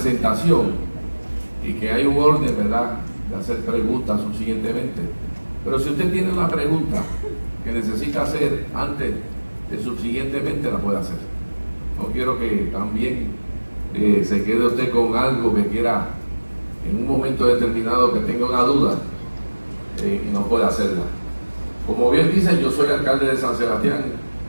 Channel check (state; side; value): inverted; both; correlation -1.00